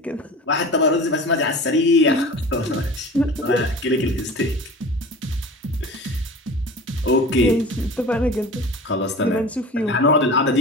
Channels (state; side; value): normal; both; correlation 0.36